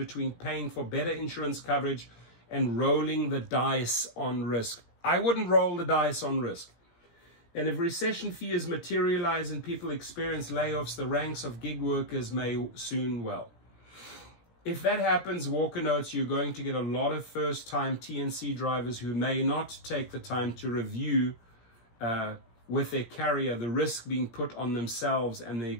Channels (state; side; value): late; right; 17 ms